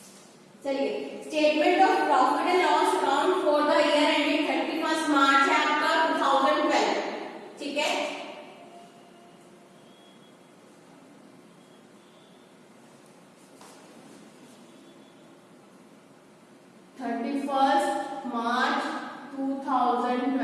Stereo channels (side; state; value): both; identical; correlation 1.00